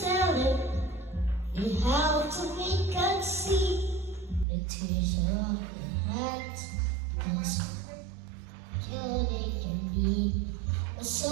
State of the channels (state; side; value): drops out; left; at 4.5 s